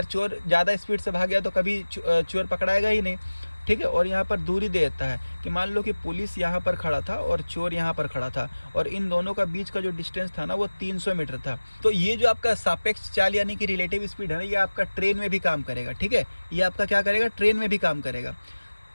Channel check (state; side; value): inverted; both; correlation -1.00